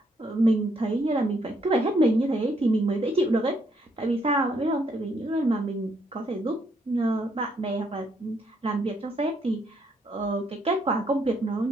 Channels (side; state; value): both; normal; correlation 0.72